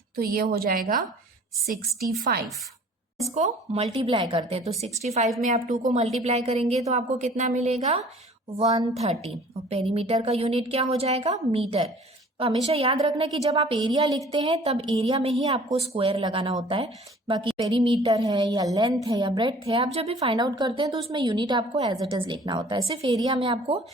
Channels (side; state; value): both; normal; correlation 0.50